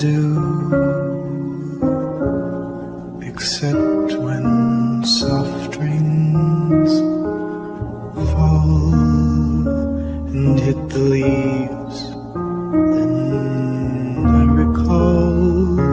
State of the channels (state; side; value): identical; both; correlation 1.00